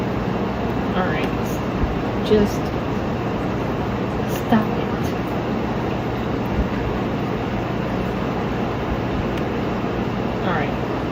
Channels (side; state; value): both; identical; correlation 1.00